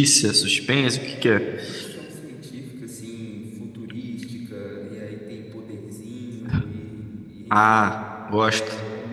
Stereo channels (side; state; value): both; identical; correlation 1.00